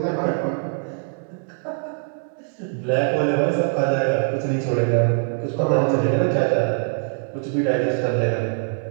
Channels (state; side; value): silent; left; 64 dB below the other